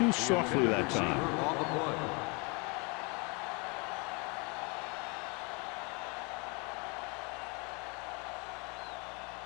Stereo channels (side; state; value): right; quieter; 31.1 dB